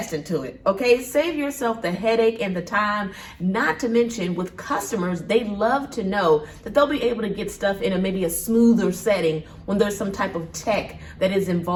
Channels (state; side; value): identical; both; correlation 1.00